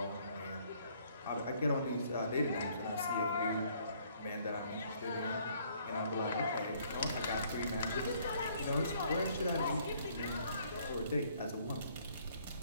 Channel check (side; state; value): both; inverted; correlation -0.64